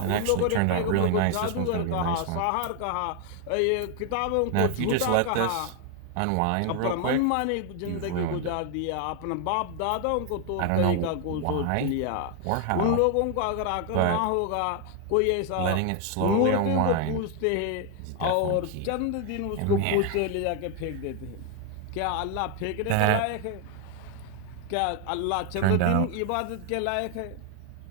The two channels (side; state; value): both; different; correlation 0.00